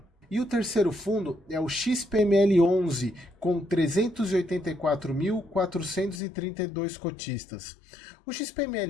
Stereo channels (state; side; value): drops out; right; at 6.2 s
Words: E o terceiro fundo é o XPML11, com 384.432 cotistas. O